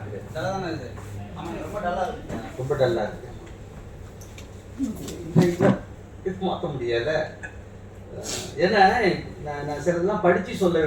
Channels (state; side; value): identical; both; correlation 1.00